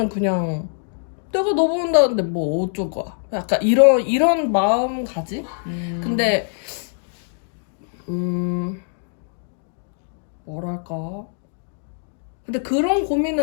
그냥 내가 너 본다는데 뭐 어쩔 거야. 약간 이런 마음가짐? 근데 뭐랄까. 근데 그런 고민은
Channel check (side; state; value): right; silent; digital silence